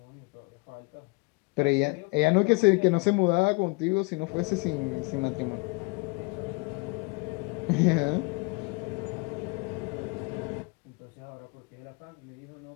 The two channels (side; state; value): right; quieter; 28.7 dB